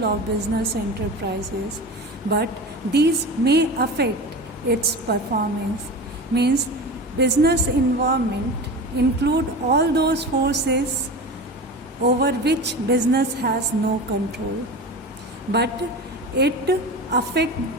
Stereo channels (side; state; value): both; normal; correlation 0.30